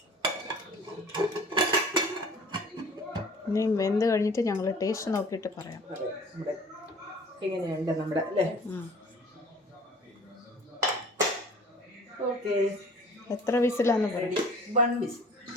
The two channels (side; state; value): both; normal; correlation 0.47